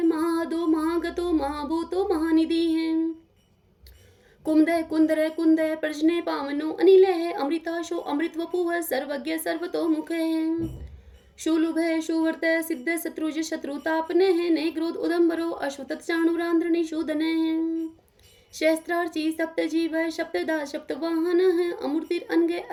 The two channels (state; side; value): identical; both; correlation 1.00